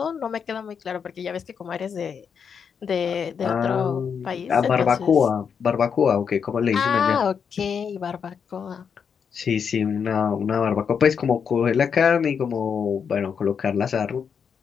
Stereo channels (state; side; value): quieter; right; 6.8 dB